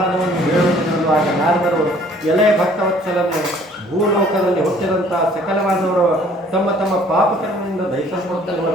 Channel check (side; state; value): both; normal; correlation 0.57